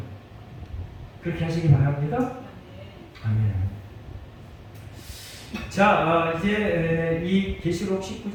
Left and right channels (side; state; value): both; identical; correlation 1.00